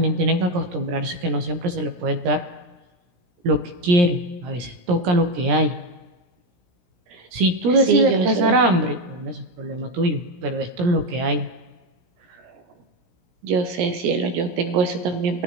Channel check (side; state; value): left; late; 17 ms